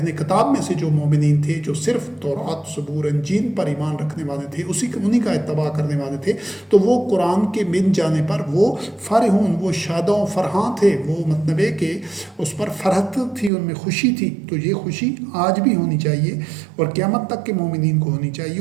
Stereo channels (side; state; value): left; drops out; at 13.5 s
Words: کتاب میں سے جو مومنین تھے جو صرف تورات، زبور، انجیل پر ایمان رکھنے والے تھے، انہی کا اتباع کرنے والے تھے، تو وہ قرآن کے مل جانے پر وہ فرحون، وہ شاد و فرحاں تھے. وہ مطلب ہے کہ اس پر فرحت تھی، ان میں خوشی تھی. تو یہ خوشی آج بھی ہونی چاہیے اور قیامت تک کے مومنین کو ہونی چاہیے.